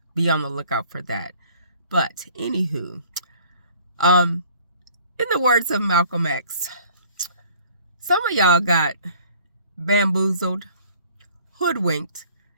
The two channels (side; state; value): both; inverted; correlation -0.54